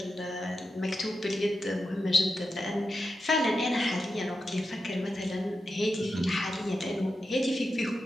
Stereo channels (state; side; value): normal; both; correlation 0.89